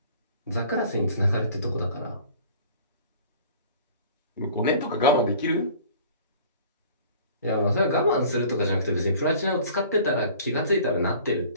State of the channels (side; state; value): both; inverted; correlation -0.48